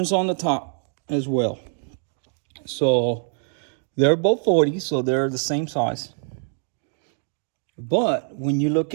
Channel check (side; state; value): left; silent; 60 dB below the other